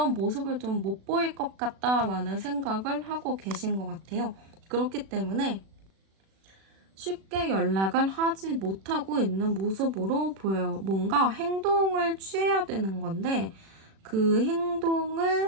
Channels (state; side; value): late; left; 36 ms